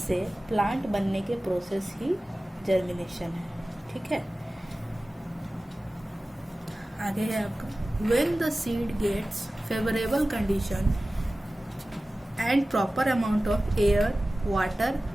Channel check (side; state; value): both; normal; correlation 0.96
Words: प्लांट बनने के प्रोसेस ही जर्मिनेशन है। ठीक है, आगे है आपका when the seed gets favorable condition and proper amount of air, water